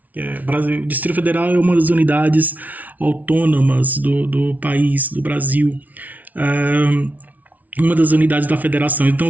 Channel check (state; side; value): late; left; 0.075 ms